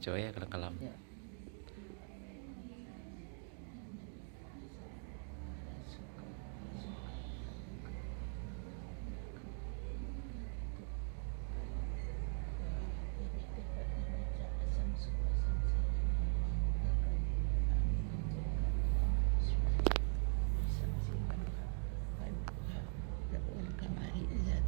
ya kalau kalam. Ya.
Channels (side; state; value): left; silent; 50 dB below the other